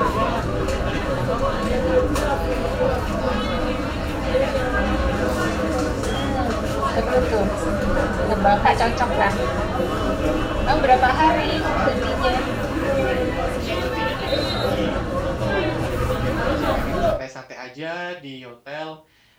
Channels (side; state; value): both; identical; correlation 1.00